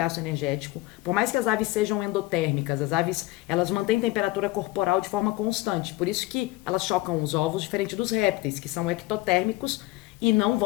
energético. Por mais que as aves sejam endotérmicas, as aves, elas mantêm temperatura corporal de forma constante. Por isso que elas chocam os ovos diferente dos répteis, que são ectotérmicos e não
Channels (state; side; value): quieter; right; 18.7 dB